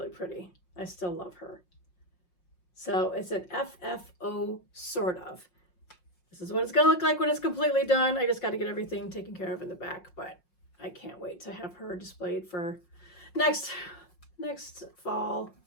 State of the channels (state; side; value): late; right; 5.6 ms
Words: pretty. I still love her. So it's an FFO sort of. This is what it's gonna look like when it's completely done. I just got to get everything taken care of in the back, but I can't wait to have her displayed for next fall,